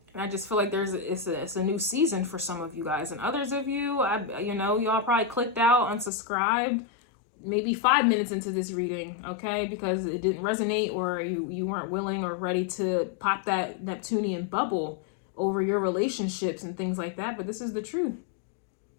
I just feel like it's a new season for some of you guys. And others of you, you know, y'all probably clicked out, unsubscribed, maybe 5 minutes into this reading, okay? Because it didn't resonate, or you weren't willing or ready to pop that Neptunian bubble over your relationships and things like that. But this is the truth.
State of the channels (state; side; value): drops out; right; at 6.1 s